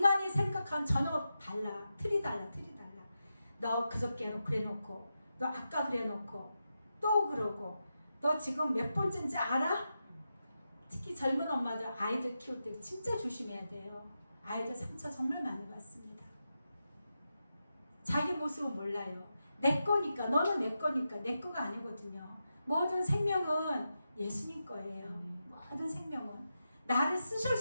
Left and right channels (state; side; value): inverted; both; correlation -0.89